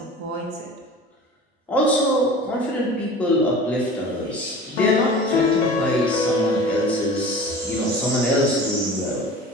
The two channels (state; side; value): normal; both; correlation 0.39